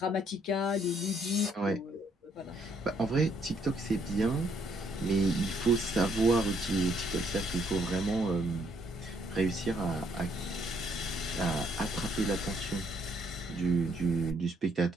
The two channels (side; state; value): both; normal; correlation 0.70